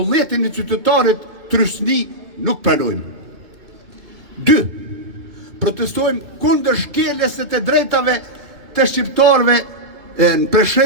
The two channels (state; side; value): late; left; 2.3 ms